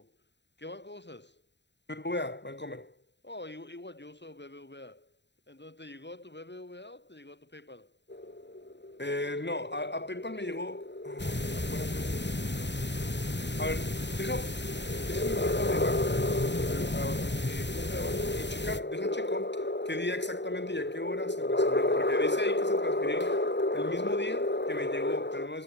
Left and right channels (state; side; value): late; right; 0.51 ms